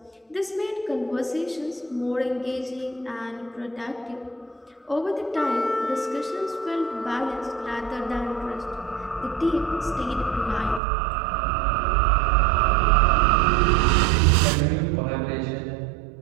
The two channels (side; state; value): left; drops out; at 10.8 s